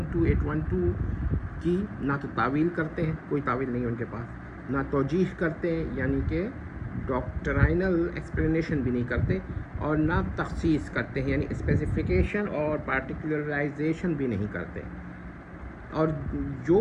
2812 کی نہ تو تعویل کرتے ہیں، کوئی تعویل نہیں ہے ان کے پاس، نہ توجیح کرتے ہیں یعنی کہ ڈاکٹرائنل ایکسپلینیشن بھی نہیں کرتے، اور نہ تخصیص کرتے ہیں یعنی اسپیسیفیکیشن اور پارٹیکولرائزیشن بھی نہیں کرتے۔ اور جو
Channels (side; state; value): both; identical; correlation 1.00